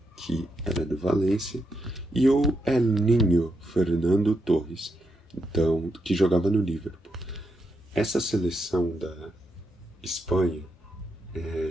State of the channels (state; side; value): normal; both; correlation 0.82